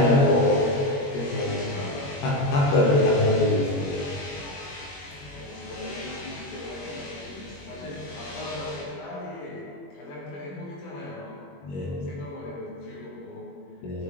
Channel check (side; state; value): right; late; 21 ms